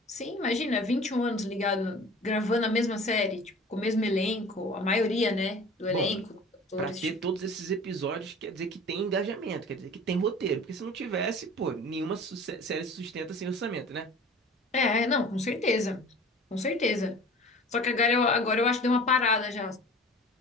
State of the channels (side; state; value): both; normal; correlation 0.43